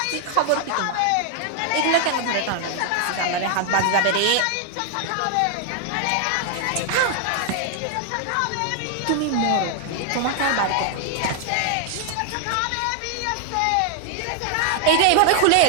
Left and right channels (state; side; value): different; both; correlation 0.00